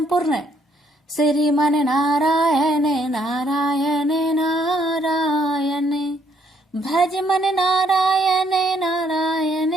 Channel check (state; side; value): normal; both; correlation 0.69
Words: श्रीमन नारायण नारायण नारायण, भज मन नारायण नारायण